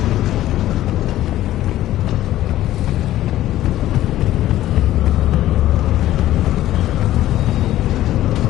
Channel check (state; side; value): quieter; right; 14.1 dB